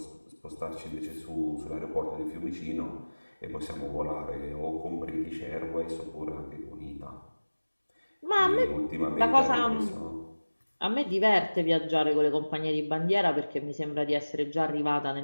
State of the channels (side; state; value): both; inverted; correlation -1.00